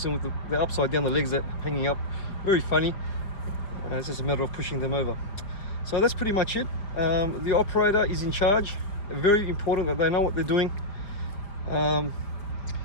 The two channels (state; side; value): late; right; 4.8 ms